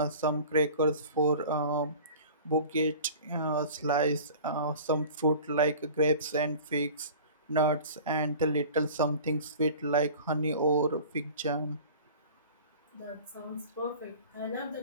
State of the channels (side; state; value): both; inverted; correlation -0.41